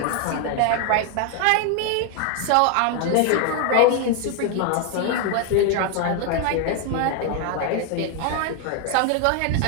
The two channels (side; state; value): both; different; correlation 0.01